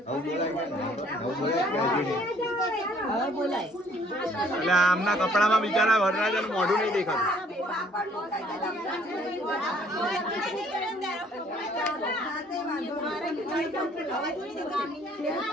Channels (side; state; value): both; normal; correlation 0.60